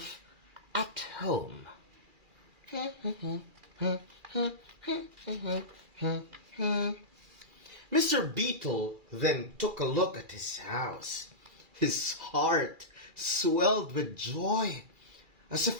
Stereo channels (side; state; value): left; late; 2.4 ms